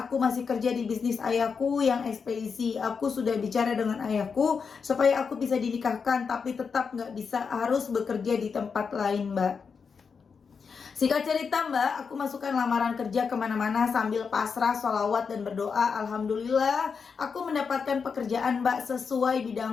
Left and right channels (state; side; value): quieter; right; 5.7 dB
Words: masih kerja di bisnis ayahku yang ekspedisi. Aku sudah bicara dengan ayahku supaya aku bisa dinikahkan, tapi tetap nggak bisa, harus bekerja di tempat lain Mbak. Singkat cerita Mbak, aku masukkan lamaran kerja kemana-mana sambil pasrah, sholawat dan berdoa. Alhamdulillah aku mendapatkan pekerjaan Mbak sesuai